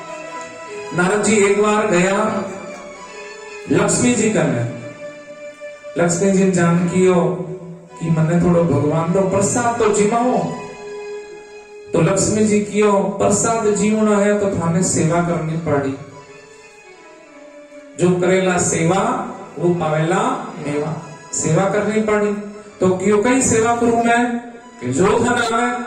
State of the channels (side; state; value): both; identical; correlation 1.00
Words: नारद जी एक बार गया लक्ष्मी जी करने। लक्ष्मी जी जानकी हो कि मने थोड़ो भगवान रो प्रसाद तो जीवाओ, तो लक्ष्मी जी कियो प्रसाद जीवना है तो थाने सेवा करनी पड़ी। जो करेला सेवा वो पावेला मेवा। सेवा करनी पड़ी तो क्यों कई सेवा करूं मैं कि जो धन आवे।